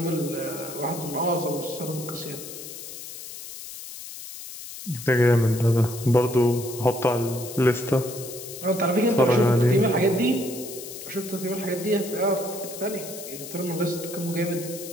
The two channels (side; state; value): left; noise; hiss, 12 dB below the sound